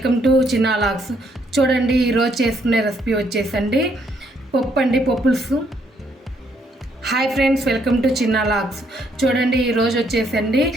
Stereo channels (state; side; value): normal; both; correlation 0.71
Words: to Chinna logs. చూడండి, ఈరోజు చేసుకునే రెసిపీ వచ్చేసండి పప్పులుసు. Hi friends, welcome to Chinna logs. చూడండి, ఈరోజు వచ్చేసండి